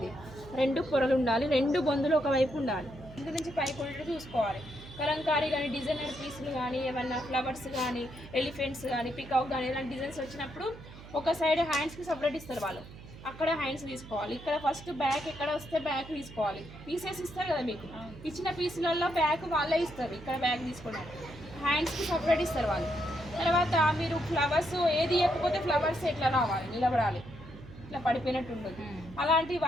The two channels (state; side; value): noise; right; hum, 16 dB below the sound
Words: 2 పొరలు ఉండాలి, 2 బొందులు ఒకవైపు ఉండాలి. ఇంటి నుంచి పైకి ఉండేది చూసుకోవాలి. కలంకారీ కానీ డిజైనర్ పీసులు కానీ ఏమన్నా ఫ్లవర్స్ కానీ ఎలిఫెంట్స్ కానీ పికాక్ కానీ ఇలాంటి డిజైన్స్ వచ్చినప్పుడు ఒక సైడ్ హ్యాండ్స్కి సపరేట్ ఇస్తారు వాళ్ళు, అక్కడ హ్యాండ్స్ తీసుకోవాలి. ఇక్కడ ఫస్ట్ బ్యాక్ ఎక్కడ వస్తే బ్యాక్ తీసుకోవాలి. పీసెస్ ఇస్తారు కదా మీకు, ఇచ్చిన పీసులలో బ్యాక్ వాళ్ళే ఇస్తారు. ఇక్కడ బ్యాక్ తీసుకోవడానికి హ్యాండ్స్కి సపరేట్ ఇస్తారు వాళ్ళు. తర్వాత మీరు ఫ్లవర్స్ ఏది ఇవ్వకపోతే ఫ్లవర్స్ ఎట్లా రావాలి, నిలబడాలి, ఇట్లా పడిపోయినట్టు ఉంటుంది. అలాంటి